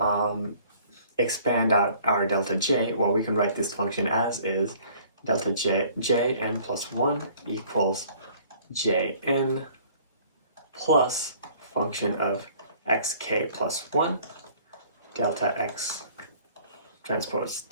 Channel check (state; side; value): inverted; both; correlation -0.55